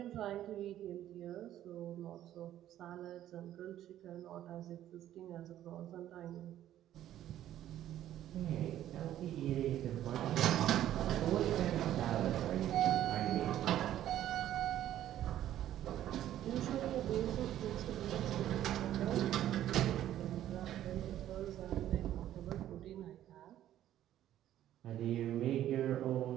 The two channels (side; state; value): left; quieter; 12.2 dB